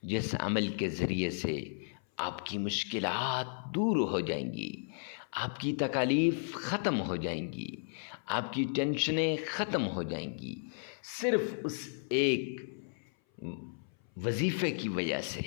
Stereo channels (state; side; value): silent; right; 55 dB below the other